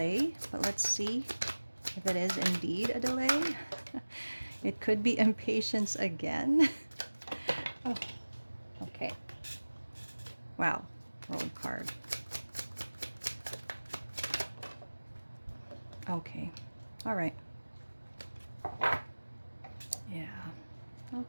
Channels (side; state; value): both; inverted; correlation -1.00